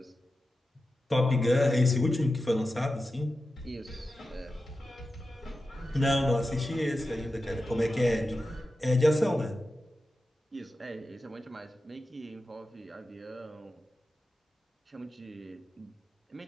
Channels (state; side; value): normal; both; correlation 0.92